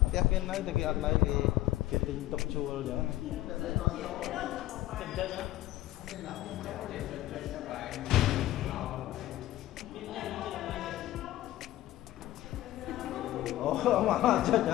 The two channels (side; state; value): right; quieter; 15.4 dB